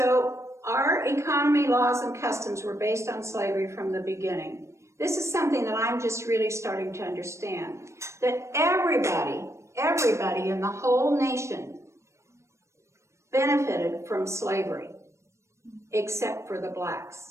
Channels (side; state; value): left; late; 0.14 ms